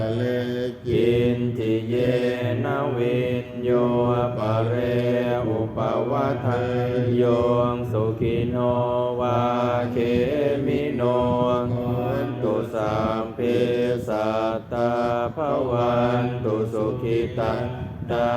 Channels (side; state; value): both; identical; correlation 1.00